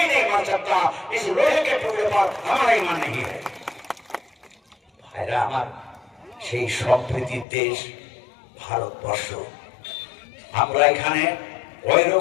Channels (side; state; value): right; drops out; at 7.5 s